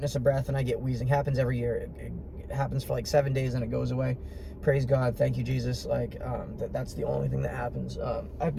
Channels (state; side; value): identical; both; correlation 1.00